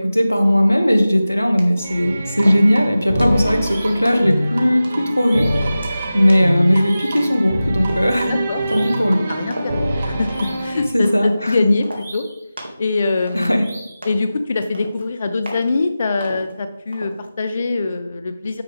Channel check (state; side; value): inverted; both; correlation -0.95